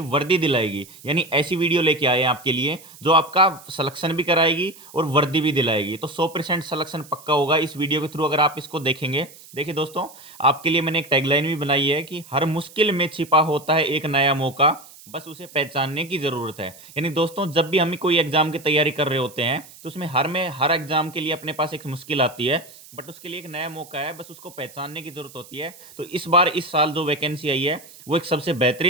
वर्दी दिलाएगी, यानी ऐसी वीडियो लेके आए हैं आपके लिए जो आपका सिलेक्शन भी कराएगी और वर्दी भी दिलाएगी। तो 100% सिलेक्शन पक्का होगा इस वीडियो के थ्रू अगर आप इसको देखेंगे। देखिए दोस्तों, आपके लिए मैंने एक टैगलाइन भी बनाई है कि हर मुश्किल में छिपा होता है एक नया मौका, बस उसे पहचानने की ज़रूरत है। यानी दोस्तों, जब भी हम कोई एग्जाम की तैयारी कर रहे होते हैं तो उसमें हर एग्जाम के लिए अपने पास एक मुश्किल आती है, बट उसके लिए एक नया मौका है, बस उसको पहचानने की ज़रूरत होती है। तो इस बार इस साल जो वैकेंसी आई है वो एक सबसे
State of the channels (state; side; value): noise; right; hiss, 20 dB below the sound